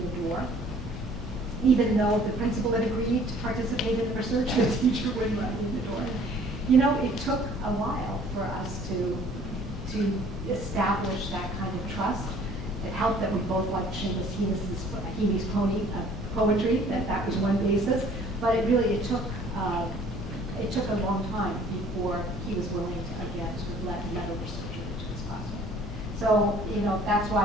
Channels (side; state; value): both; normal; correlation 0.55